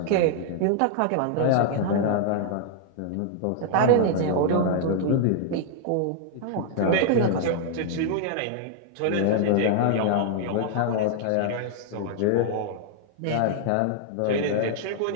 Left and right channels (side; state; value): both; different; correlation -0.01